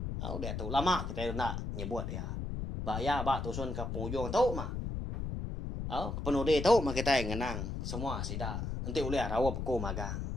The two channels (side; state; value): left; noise; rumble, 4 dB below the sound